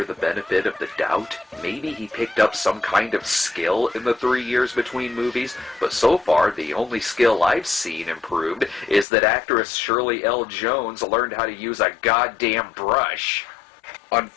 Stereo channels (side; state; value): right; drops out; at 9.1 s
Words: the benefit of the doubt. Maybe he picked up some kind of skill in the 3 years between movies, but so far the only skill I've seen improved is that actress Shirley L. Jones learned how to use a goddamn brush.